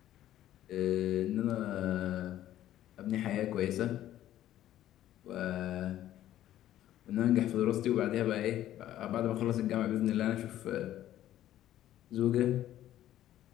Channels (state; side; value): quieter; right; 12.8 dB